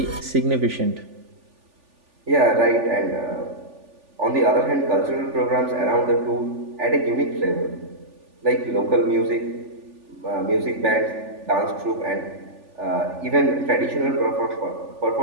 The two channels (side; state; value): left; late; 3.4 ms